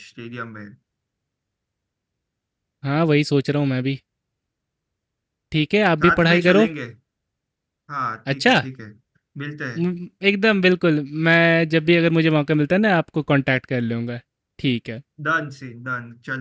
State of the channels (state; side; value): identical; both; correlation 1.00